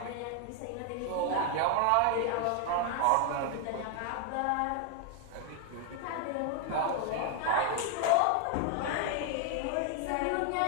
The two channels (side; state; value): both; different; correlation 0.00